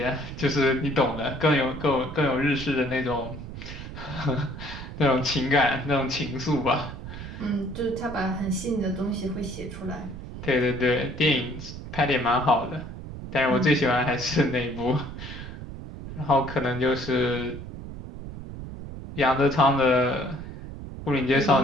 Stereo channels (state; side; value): noise; right; rumble, 10 dB below the sound